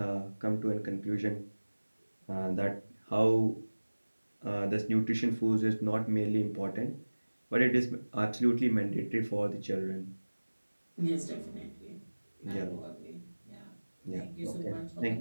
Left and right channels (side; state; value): both; inverted; correlation -1.00